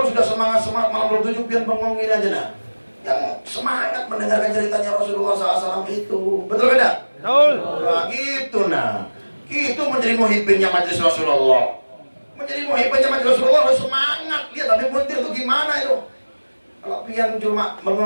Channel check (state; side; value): inverted; both; correlation -1.00